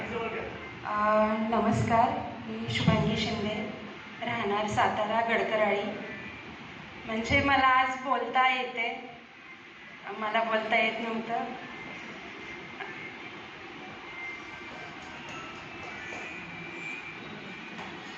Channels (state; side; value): identical; both; correlation 1.00